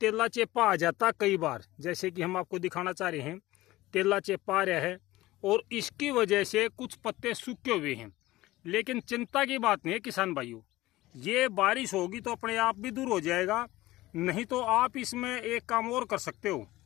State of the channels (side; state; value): right; quieter; 17.7 dB